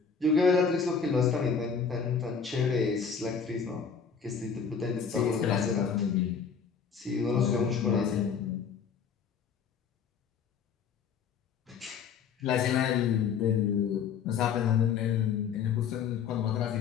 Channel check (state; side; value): quieter; right; 6.4 dB